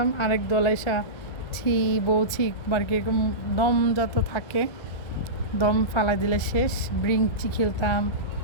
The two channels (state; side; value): late; right; 1.4 ms